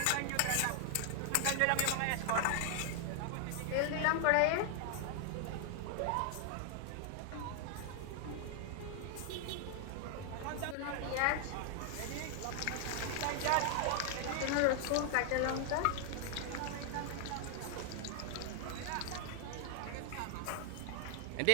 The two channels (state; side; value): different; both; correlation 0.00